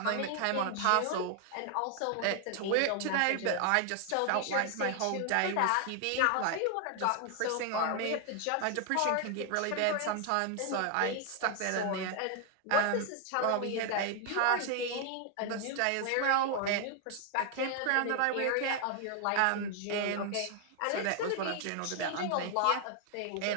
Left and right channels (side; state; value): both; different; correlation 0.00